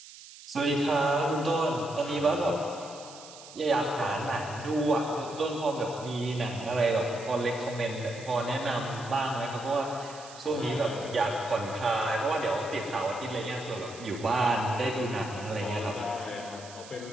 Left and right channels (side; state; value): right; noise; hiss, 17 dB below the sound